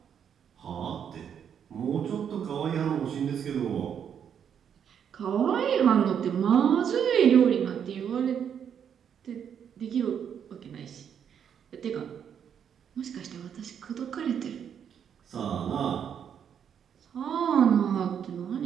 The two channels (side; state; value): left; quieter; 8.2 dB